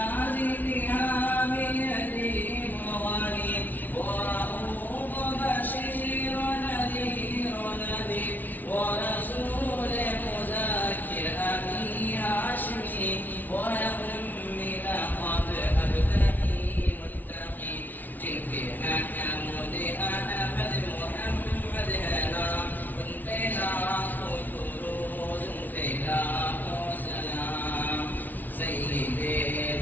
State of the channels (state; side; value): late; right; 0.083 ms